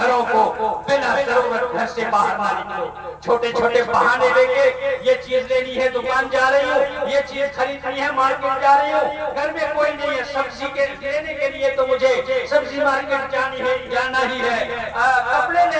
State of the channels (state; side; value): identical; both; correlation 1.00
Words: کو, بلا ضرورت گھر سے باہر نہ نکلو. چھوٹے چھوٹے بہانے لے کے یہ چیز لینی ہے دکان جا رہی ہوں, یہ چیز خریدنی ہے مارکیٹ جا رہی ہوں, گھر میں کوئی نہیں ہے, سبزی کے لینے کے لیے تو مجھے سبزی مارکیٹ جانا ہی ہے, کپڑے